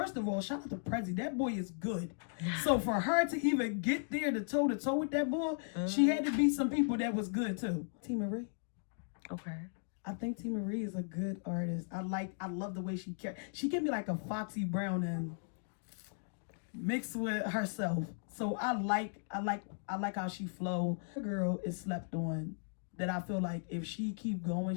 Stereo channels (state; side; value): silent; right; digital silence